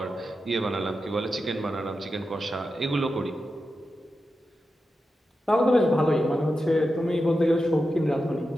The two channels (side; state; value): both; normal; correlation 0.90